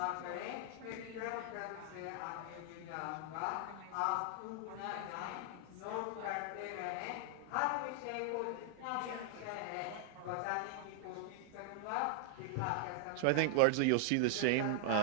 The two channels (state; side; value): different; both; correlation 0.00